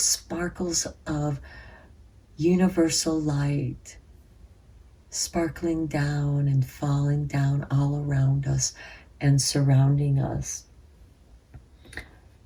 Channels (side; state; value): both; identical; correlation 1.00